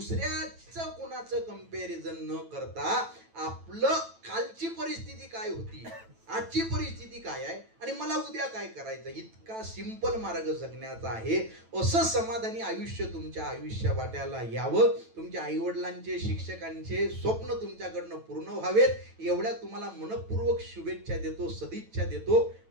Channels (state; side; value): late; left; 9.0 ms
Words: कोणाचं कंपॅरिझन न करता आपलं कालची परिस्थिती काय होती, आजची परिस्थिती काय आहे आणि मला उद्या काय करायचं, इतका सिंपल मार्ग जगण्याचा आहे. असं समाधानी आयुष्य तुमच्या आयुष्या वाट्याला यावं. तुमच्या आईवडिलांचे, शिक्षकांचे स्वप्न तुमच्याकडनं पूर्ण व्हावेत, एवढ्या तुम्हाला मनपूर्वक शुभेच्छा देतो, सदिच्छा देतो.